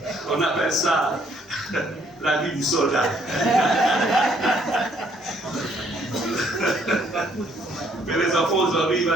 On appelle ça la vie du soldat. Mais les enfants aujourd'hui, ils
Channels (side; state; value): both; normal; correlation 0.67